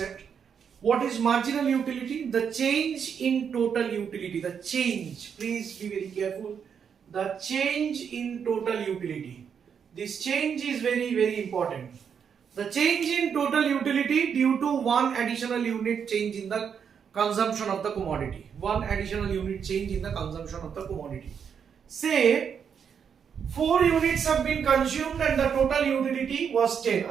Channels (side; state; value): left; quieter; 7.2 dB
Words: What is marginal utility? The change in total utility. The change, please be very careful. The change in total utility. This change is very, very important. The change in total utility due to one additional unit change in the consumption of the commodity. One additional unit change in the consumption of the commodity. Say 4 units have been consumed and the total utility was 10.